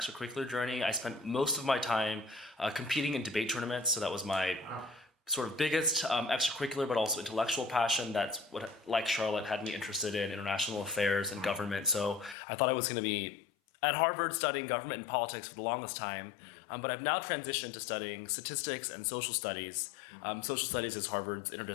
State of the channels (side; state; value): right; drops out; at 12.4 s